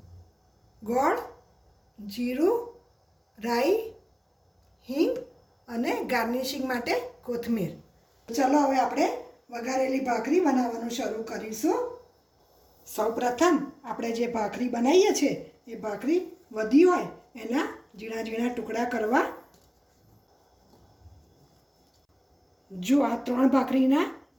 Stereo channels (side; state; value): both; identical; correlation 1.00